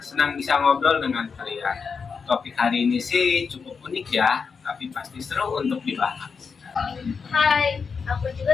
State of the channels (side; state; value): right; quieter; 5.5 dB